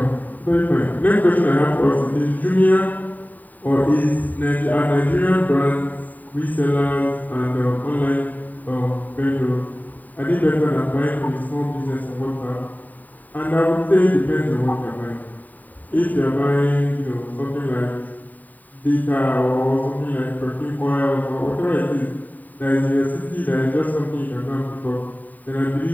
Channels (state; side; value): late; right; 0.083 ms